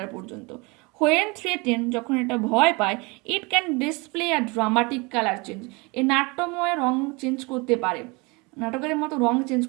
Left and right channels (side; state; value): left; quieter; 27.4 dB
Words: পর্যন্ত। হোয়েন থ্রেটেন, যখন এটা ভয় পায়, it can display a dramatic colour change, এই নাট্যময় রং চেঞ্জ করতে পারে। নাটকের মতো রং চেঞ্জ